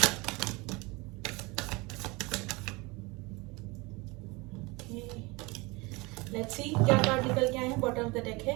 लेट्स सी क्या कार्ड निकल के आए हैं। बॉटम ऑफ द डेक है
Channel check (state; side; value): quieter; left; 25.3 dB